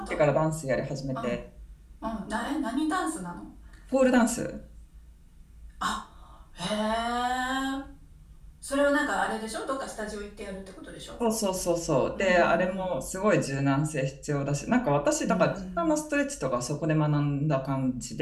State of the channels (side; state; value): both; identical; correlation 1.00